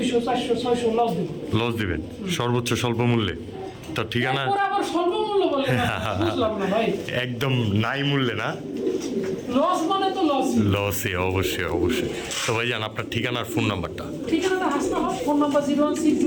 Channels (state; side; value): identical; both; correlation 1.00